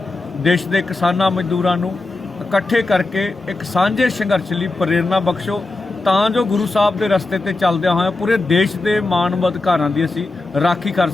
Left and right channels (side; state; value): right; quieter; 3.2 dB